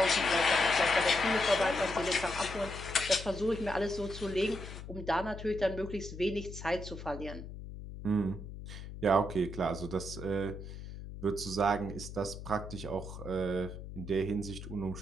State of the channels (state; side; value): noise; left; hum, 11 dB below the sound